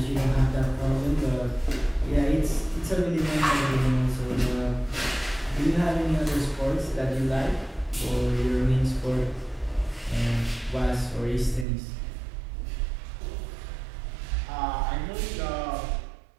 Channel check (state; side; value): drops out; left; at 11.7 s